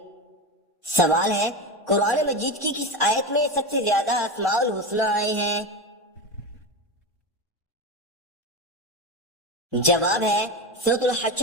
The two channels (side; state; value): both; normal; correlation 0.19